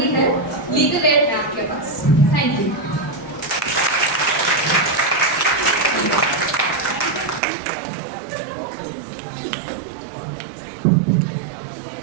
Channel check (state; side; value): drops out; left; at 7.4 s